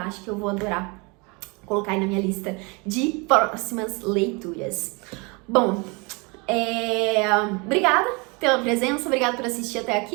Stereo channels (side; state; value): left; quieter; 29.5 dB